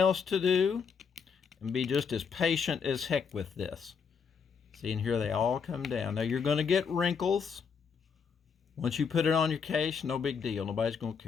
to do, and be just as patient as heck with this. See, and here they all come down. Now you're going to get wrinkles. Once you put it on your case, no big deal. Nobody's going to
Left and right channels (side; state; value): right; quieter; 6.1 dB